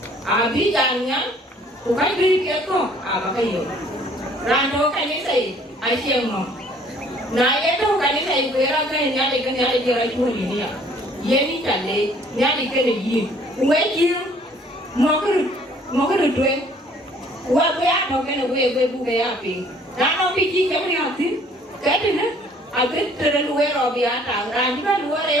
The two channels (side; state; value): both; normal; correlation 0.58